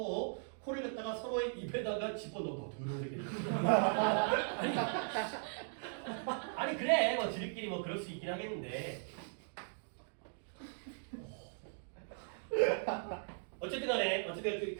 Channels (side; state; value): left; silent; digital silence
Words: 코를 갖다가 서로의 입에다가 집어넣어. 더러운 새끼들. 아니 그래 뭐 지들끼리 뭐 그럴 수 있긴 하겠는데 어쨌든 간에